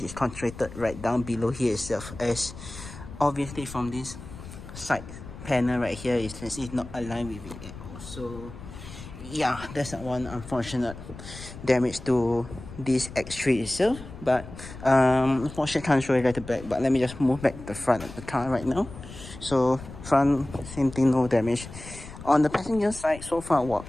is concentrated right down below here itself, as obviously from this side panel right here, you can see it's not aligned with it at all. So yeah, that's one unfortunate damage to this X3 itself. But unfortunately I can't show you guys the back, but let me just move back the front of the car right now. So front, same thing, no damage. On the passenger side, so far,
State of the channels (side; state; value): left; noise; rumble, 14 dB below the sound